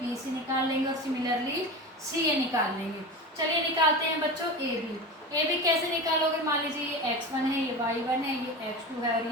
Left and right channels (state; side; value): normal; both; correlation 0.27